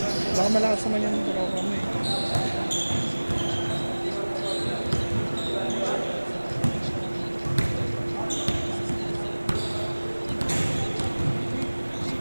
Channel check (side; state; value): both; inverted; correlation -1.00